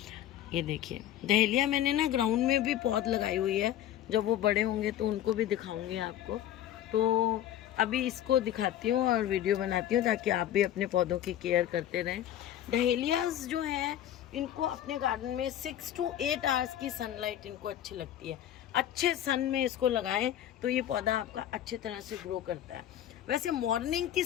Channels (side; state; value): right; quieter; 11.7 dB